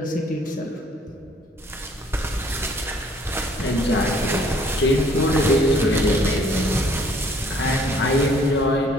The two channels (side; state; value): both; normal; correlation 0.60